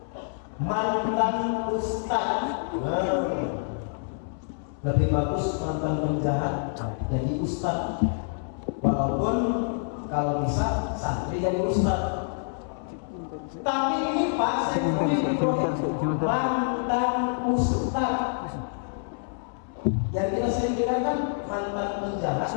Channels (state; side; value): silent; right; 60 dB below the other